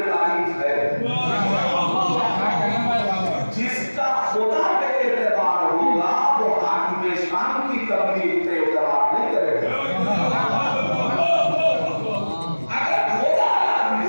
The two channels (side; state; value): both; inverted; correlation -1.00